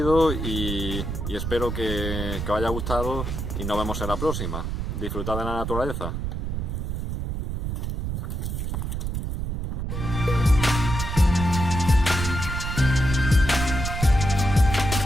y espero que os haya gustado y nos vemos en la próxima. Disfrutad de la naturaleza.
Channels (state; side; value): noise; right; rumble, 3 dB below the sound